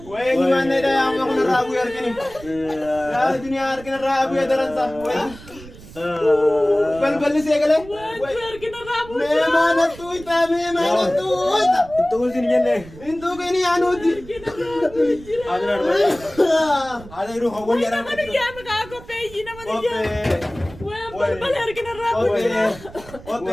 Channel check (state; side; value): noise; right; rumble, 18 dB below the sound